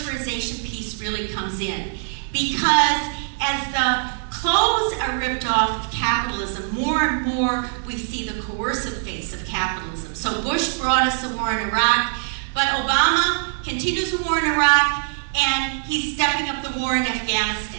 piece really comes in, because as the clothes are ripped off of capitalism, more and more we see the coercive face of capitalism. So Bush brought us a war in Iraq, but Obama continues the war in Iraq, and he's stepping up the war in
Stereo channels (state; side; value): silent; left; digital silence